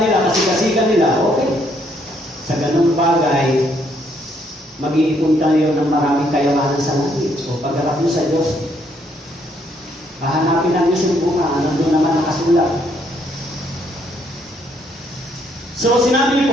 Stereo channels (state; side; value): normal; both; correlation 0.70